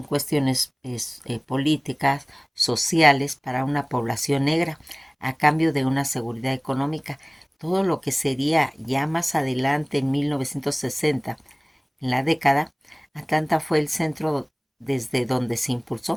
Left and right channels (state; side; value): identical; both; correlation 1.00